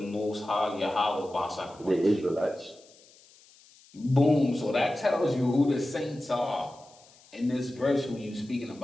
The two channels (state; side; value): noise; left; hiss, 26 dB below the sound